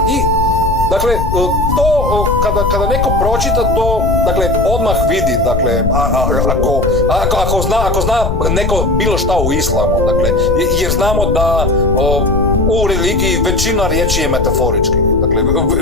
I dakle, to kada neko pročita to, dakle, odmah vidi, dakle, ako zna neko bilo šta u islamu, dakle, jer znamo da u religiji većina riječi je metaforički. Dakle,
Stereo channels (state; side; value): noise; left; rumble, 3 dB below the sound